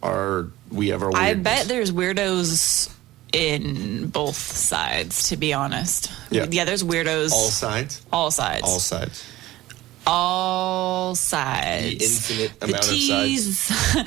are, we have our weirdness. I bet there's weirdos in both sides, to be honest. Yeah, there's weirdos. All sides? All sides. All sides. All sides. The infinite amount T's, of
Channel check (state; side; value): quieter; left; 16.6 dB